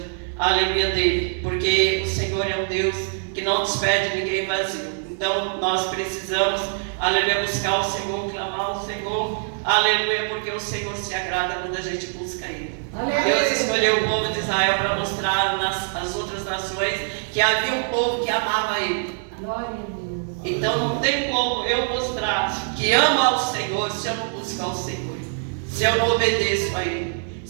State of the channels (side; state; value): left; silent; digital silence